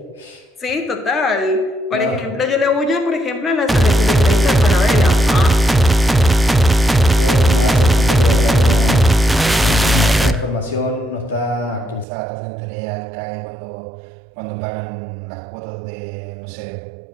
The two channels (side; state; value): left; drops out; at 12.1 s